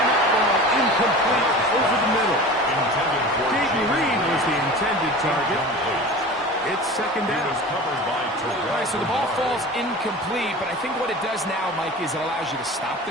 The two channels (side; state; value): both; normal; correlation 0.36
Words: that ball incomplete over the middle. Jaden Reed was the intended target. It's 2nd down. All right, so the ball falls incomplete, but I think what it does now, Mike, is it allows you to stop the